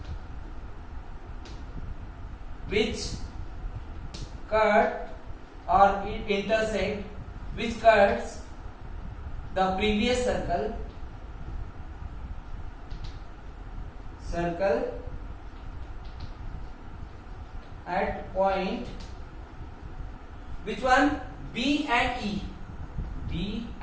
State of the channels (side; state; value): both; identical; correlation 1.00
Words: which cut or intersect, which cuts the previous circle at point, which one? B and E.